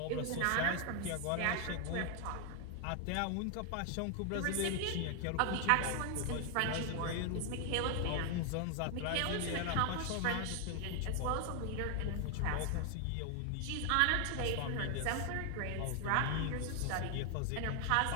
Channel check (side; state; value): both; different; correlation 0.00